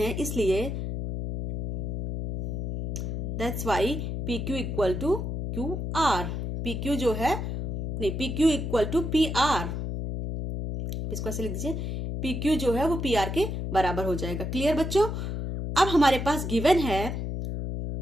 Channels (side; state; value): left; noise; hum, 3 dB below the sound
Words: हैं, इसलिए that's why PQ equal to QR। PQ जो है नहीं, P Q equal to P R, इसको ऐसे लिख दीजिए, पी क्यू जो है वो पी आर के बराबर हो जाएगा। क्लियर बच्चों? अब हमारे पास गिवन है